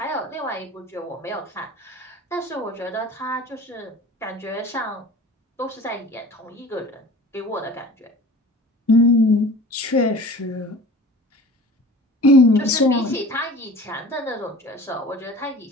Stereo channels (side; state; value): both; normal; correlation 0.41